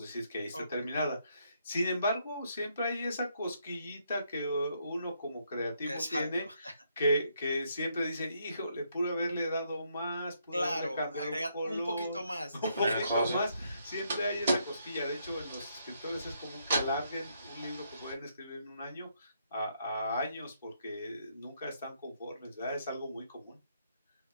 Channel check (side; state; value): both; inverted; correlation -0.75